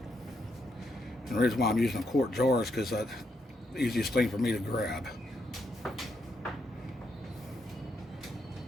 And the reason why I'm using a quart jar is because that's the easiest thing for me to grab.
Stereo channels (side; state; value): both; normal; correlation 0.79